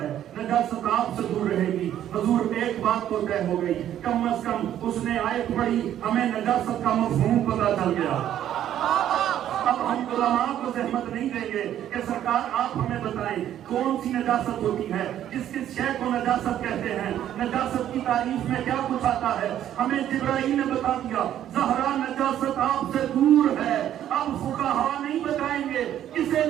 ہے، نجاست آپ سے دور رہے گی۔ حضور ایک بات تو طے ہو گئی، کم از کم اس نے آیت پڑھی، ہمیں نجاست کا مفہوم پتہ چل گیا۔ اب ہم علماء کو زحمت نہیں دیں گے کہ سرکار آپ ہمیں بتائیں کون سی نجاست ہوتی ہے، کس شے کو نجاست کہتے ہیں، نجاست کی تعریف میں کیا کچھ آتا ہے۔ ہمیں جبرائیل نے بتا دیا زہرا نجاست آپ سے دور ہے۔ اب فقہاء نہیں بتائیں گے کسے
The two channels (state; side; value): quieter; left; 11.2 dB